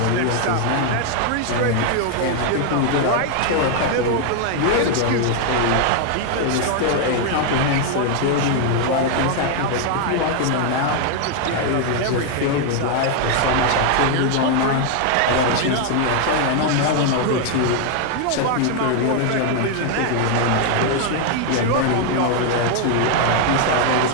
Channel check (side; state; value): both; different; correlation 0.00